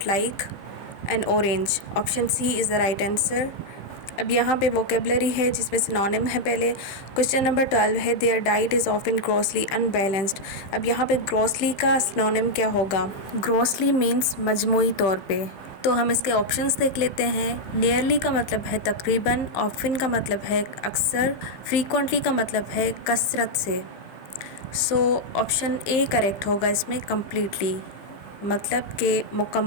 like an orange, option C is the right answer. अब यहाँ पे vocabulary है जिसमें synonym है पहले। Question number 12 है their diet is often grossly unbalanced. अब यहाँ पे ग्रॉसली का सिनोनिम क्या होगा? ग्रॉसली मीन्स मजमूई तौर पे। तो हम इसके ऑप्शंस देख लेते हैं। नियरली का मतलब है तकरीबन, ऑफन का मतलब है अक्सर, फ्रीक्वेंटली का मतलब है कसरत से। सो ऑप्शन ए करेक्ट होगा इसमें, कम्प्लीटली मतलब के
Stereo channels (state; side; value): late; right; 15 ms